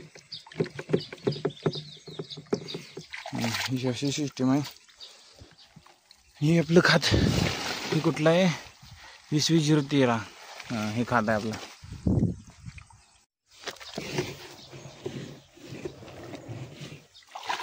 अशी सिस्टीम आहे. हे आपलं खात हे कुठलं आहे, 2020-013. हे खात आहे आपलं.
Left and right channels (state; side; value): identical; both; correlation 1.00